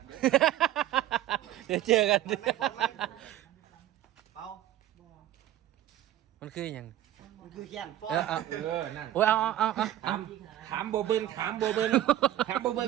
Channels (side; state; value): left; quieter; 13.2 dB